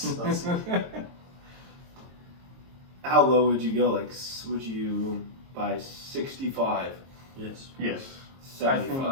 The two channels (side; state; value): left; late; 22 ms